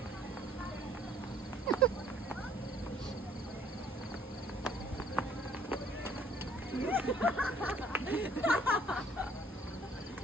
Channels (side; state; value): both; normal; correlation 0.59